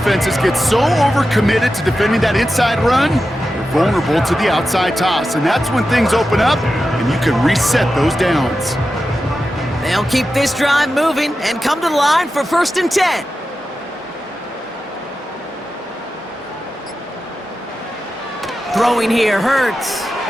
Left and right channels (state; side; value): normal; both; correlation 0.91